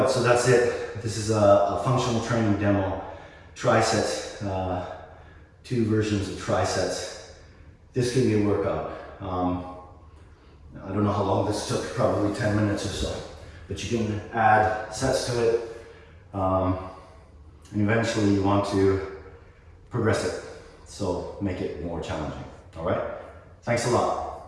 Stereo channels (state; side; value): identical; both; correlation 1.00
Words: so that's it. This is a functional training demo. Trisets, 2 versions of trisets. This can be a workout. I don't know how long this took, probably 10 minutes or so. But you can add sets to it. And eventually you want to progress it. So make it more challenging. All right? Thanks a